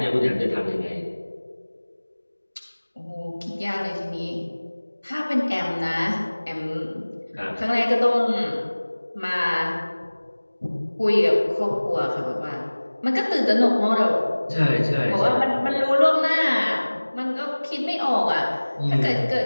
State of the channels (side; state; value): both; inverted; correlation -1.00